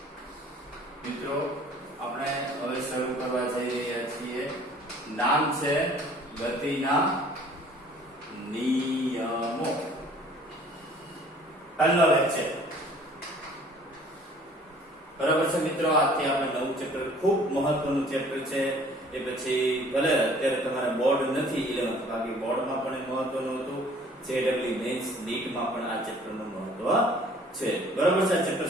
મિત્રો આપણે હવે શરૂ કરવા જઈ રહ્યા છીએ. નામ છે ગતિના નિયમો. પહેલો લેક્ચર બરાબર છે મિત્રો. આજથી આપણે નવું ચેપ્ટર, ખૂબ મહત્વનું ચેપ્ટર છે. એ પછી ભલે અત્યારે તમારે બોર્ડ નથી 11th, બાકી બોર્ડમાં પણ મહત્વનું હતું. જેડબલ્યુ મેન્સ નીટમાં પણ આ ચેપ્ટરનું મહત્વ છે. બરાબર છે. આ ચેપ્ટર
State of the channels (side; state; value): both; normal; correlation 0.54